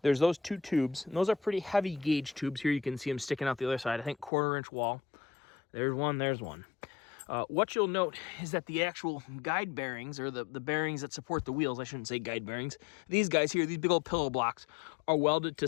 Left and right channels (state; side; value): drops out; right; at 4.3 s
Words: there's those two tubes, and those are pretty heavy gauge tubes. Here you can see them sticking out the other side. I think 1/4-inch wall. There's one, there's one. What you'll note is that the actual guide bearings, or the bearings that support the wheels, I shouldn't say guide bearings, these guys here, these big old pillow blocks, are welded to